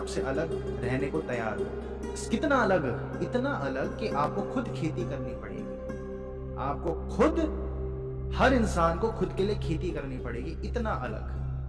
अलग रहने को तैयार हो। कितना अलग? इतना अलग कि आपको खुद खेती करनी पड़ेगी, आपको खुद, हर इंसान को खुद के लिए खेती करनी पड़ेगी, इतना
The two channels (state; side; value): identical; both; correlation 1.00